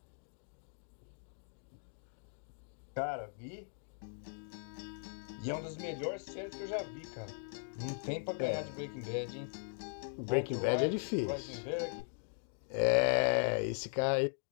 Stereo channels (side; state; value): right; silent; digital silence